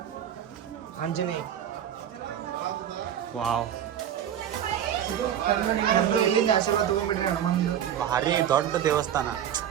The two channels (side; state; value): left; quieter; 10.0 dB